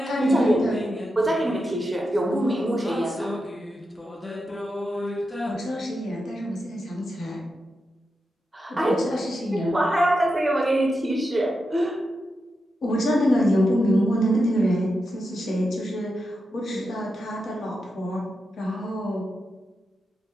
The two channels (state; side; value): normal; both; correlation 0.88